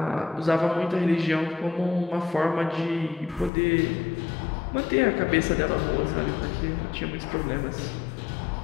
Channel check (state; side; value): drops out; right; at 3.5 s